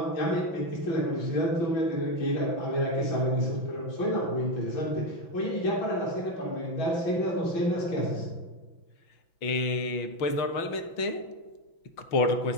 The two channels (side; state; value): right; late; 6.0 ms